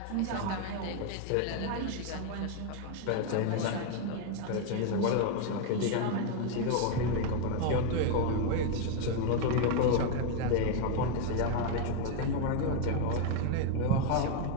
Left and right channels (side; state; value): both; different; correlation 0.01